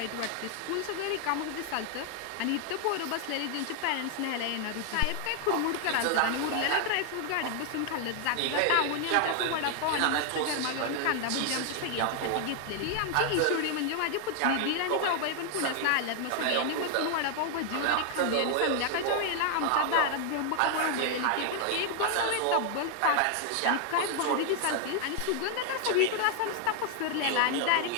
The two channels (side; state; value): both; different; correlation 0.00